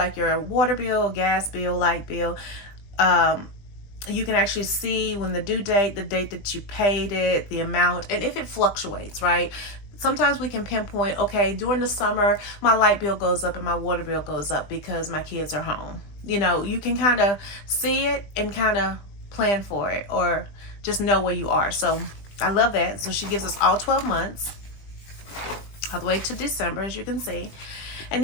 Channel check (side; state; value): right; late; 20 ms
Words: your water bill, gas bill, light bill. You can actually see when the due date, the date that you paid it, the amount, and if it fluctuates, right? Sometimes we can pinpoint, okay, during the summer, my light bill goes up and my water bill goes up because my kids are home. You know, you can kind of see it and kind of plan for it or just know where you are. So I love that. So she gives us all 12 months, all the way to December, as you can see. And